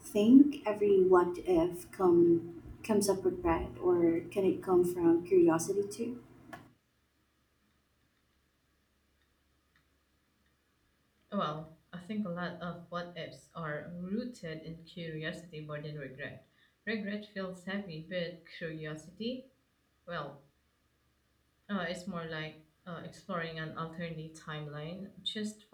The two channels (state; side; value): identical; both; correlation 1.00